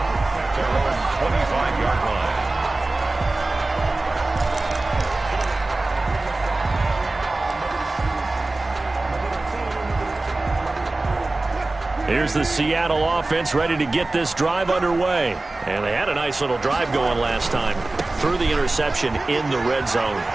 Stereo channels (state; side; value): quieter; left; 3.0 dB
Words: 25-yard line. Here's the Seattle offense ready to get this drive underway. And they had a nice little drive going last time. threw the interception in the red zone.